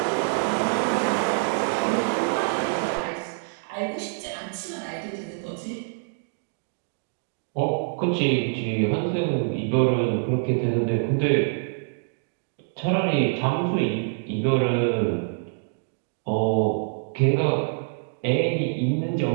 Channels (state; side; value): silent; left; digital silence